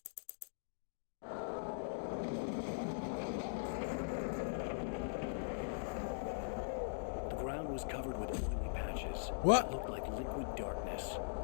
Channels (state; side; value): silent; right; digital silence